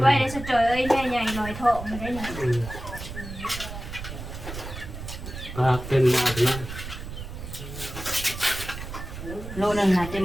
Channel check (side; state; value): right; noise; rumble, 10 dB below the sound